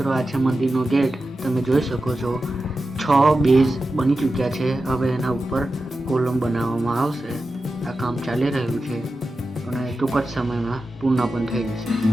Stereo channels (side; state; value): both; normal; correlation 0.92